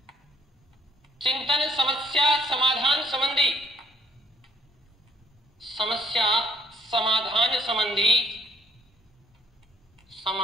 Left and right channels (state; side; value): normal; both; correlation 0.63